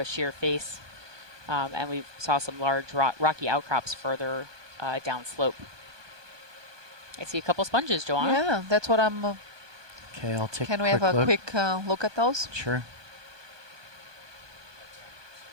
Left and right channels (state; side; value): late; left; 1.2 ms